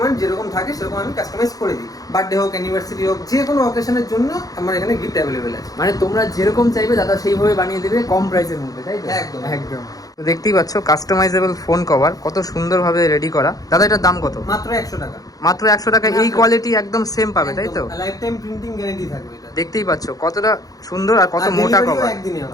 যেরকম থাকে সেরকম আমি কাস্টমাইজ করে দিই। বার্থডে হোক, অ্যানিভার্সারি হোক, যে কোনো অকেশনের জন্য আমার এখানে গিফট অ্যাভেলেবেল আছে। মানে তোমরা যেরকম চাইবে দাদা সেইভাবে বানিয়ে দেবে, কম প্রাইসের মধ্যে, তাই তো? একদম একদম। তো দেখতেই পাচ্ছ কাস্টমাইজেবল ফোন কভার কত সুন্দরভাবে রেডি করা। দাদা এটার দাম কত? মাত্র 100 টাকা। মাত্র 100 টাকা। এই কোয়ালিটি একদম সেম পাবে, তাই তো? লাইফ টাইম প্রিন্টিং গ্যারান্টি থাকবে এটা। দেখতেই পাচ্ছ কতটা সুন্দর আর কত মোটা কভার। একদিনই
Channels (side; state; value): right; late; 0.18 ms